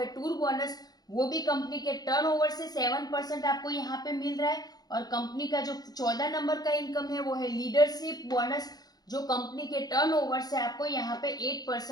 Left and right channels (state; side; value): late; right; 0.19 ms